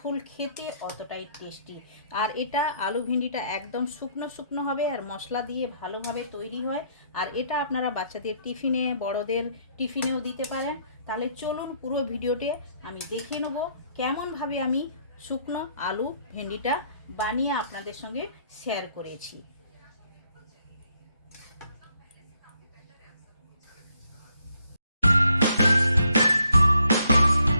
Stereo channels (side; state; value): both; inverted; correlation -0.69